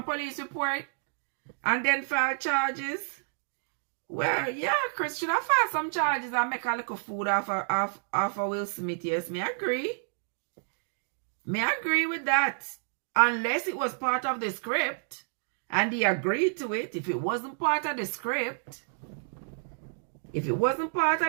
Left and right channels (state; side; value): silent; left; digital silence